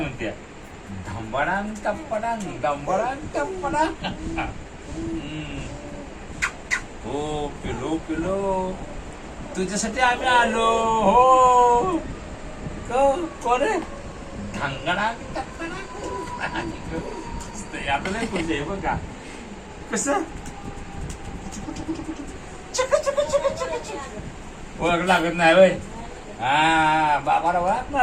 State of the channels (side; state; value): both; identical; correlation 1.00